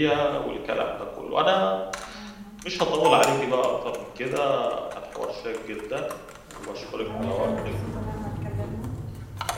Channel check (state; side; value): identical; both; correlation 1.00